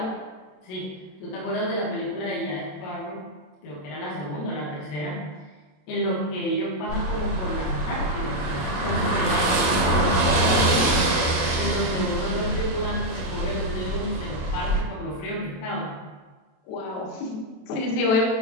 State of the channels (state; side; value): late; right; 27 ms